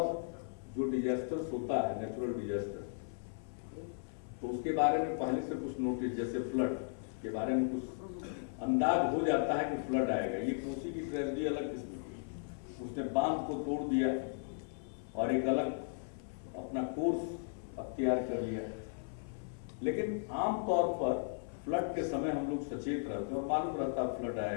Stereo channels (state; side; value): silent; right; 54 dB below the other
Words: जो डिजास्टर्स होता है, नेचुरल डिजास्टर, तो उसके बारे में पहले से कुछ नोटिस, जैसे फ्लड के बारे में कुछ अंदाज हो जाता है कि फ्लड आएगा। ये कोसी की ट्रेजेडी अलग किस्म की, उसने बांध को तोड़ दिया और एक अलग अपना कोर्स अख्तियार कर लिया। लेकिन आमतौर पर फ्लड के समय हम लोग सचेत रहते हैं और मालूम रहता फ्लड